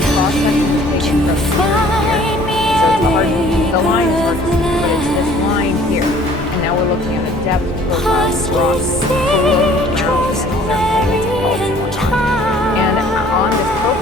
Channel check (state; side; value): normal; both; correlation 0.54